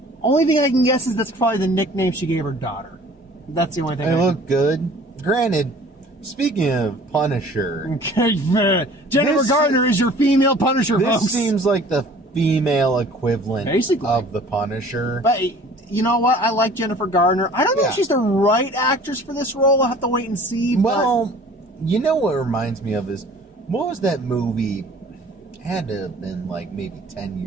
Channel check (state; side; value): normal; both; correlation 0.49